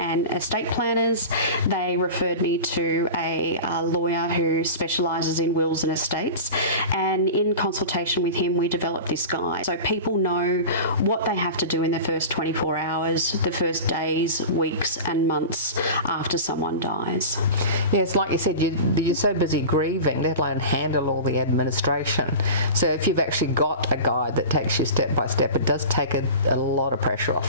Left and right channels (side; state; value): both; inverted; correlation -0.32